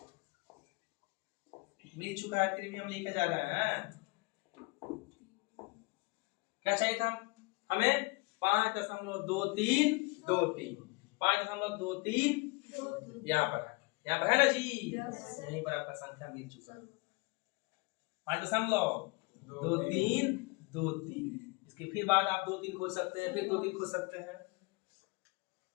मिल चुका है, फिर भी हम लेके जा रहे हैं। क्या चाहिए था हमें 5.2323 5.23 यहाँ पर है, यहाँ पर है ना जी। यहीं पर आपका संख्या मिल चुका है 5.2323। इसके फिर बाद आप 2 3 खोज सकते हैं, फिर 2 3 खोज सकते हैं।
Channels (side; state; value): right; quieter; 26.8 dB